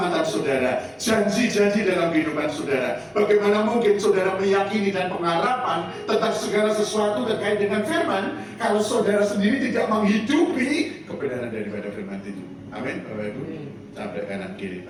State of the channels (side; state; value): both; identical; correlation 1.00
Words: saudara, janji-janji dalam kehidupan saudara. Bagaimana mungkin saudara meyakini dan pengharapan tentang segala sesuatu terkait dengan firman, kalau saudara sendiri tidak menghidupi kebenaran daripada firman itu. Amin, Bapak Ibu. Sampai kanan kiri